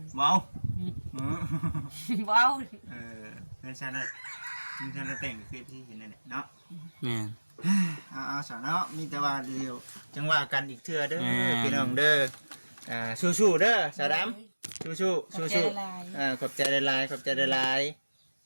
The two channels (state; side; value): inverted; both; correlation -1.00